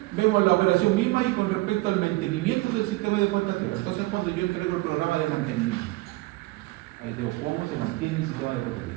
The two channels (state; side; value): quieter; left; 20.9 dB